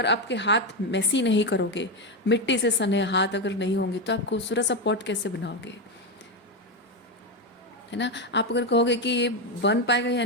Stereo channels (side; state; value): both; normal; correlation 0.10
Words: आपके हाथ मैसी नहीं करोगे, मिट्टी से सने हाथ अगर नहीं होंगे, तो आप खूबसूरत सा पॉट कैसे बनाओगे, है ना। आप अगर कहोगे कि ये बन पाएगा या